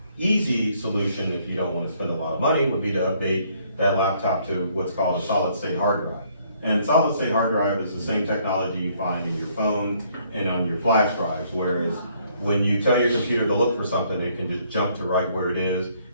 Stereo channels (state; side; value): inverted; both; correlation -0.66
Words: easy solution, if you don't want to spend a lot of money, would be to update that laptop to what's called a solid state hard drive. And solid state hard drive is the same technology you find in your phone and on your flash drives, whereas when you tell your computer to look for something, it can just jump to right where it is